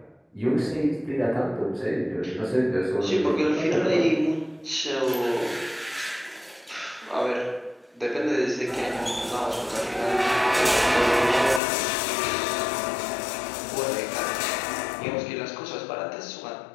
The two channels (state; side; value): drops out; right; at 11.6 s